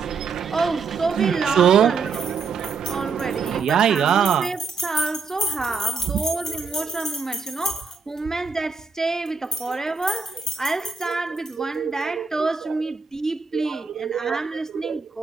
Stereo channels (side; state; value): left; quieter; 5.1 dB